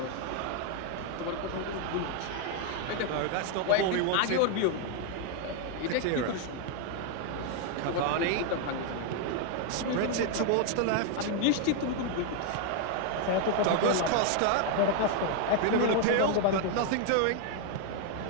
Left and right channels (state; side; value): different; both; correlation 0.00